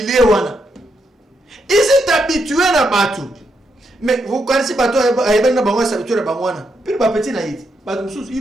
Ils sont habitués à battre. Mais vous connaissez pas toi, ils sont habitués à battre. Puis les petits naïfs,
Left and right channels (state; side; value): normal; both; correlation 0.80